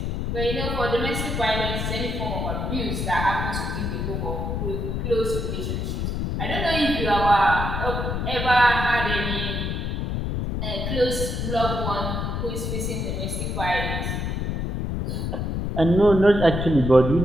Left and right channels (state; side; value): noise; left; rumble, 2 dB below the sound